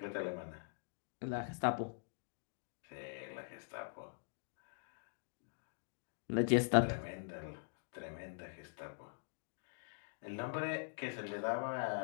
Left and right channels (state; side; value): silent; right; digital silence